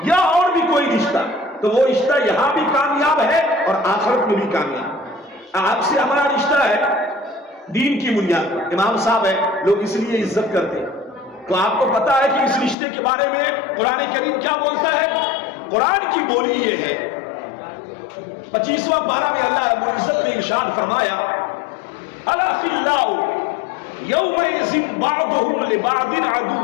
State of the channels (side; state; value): right; drops out; at 12.8 s